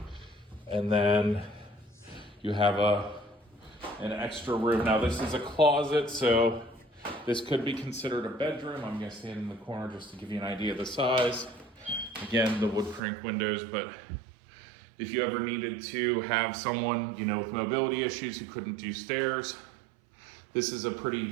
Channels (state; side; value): drops out; left; at 13.0 s